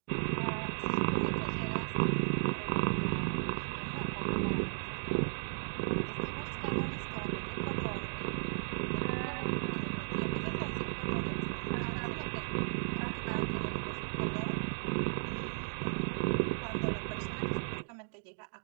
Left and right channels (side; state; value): left; silent; digital silence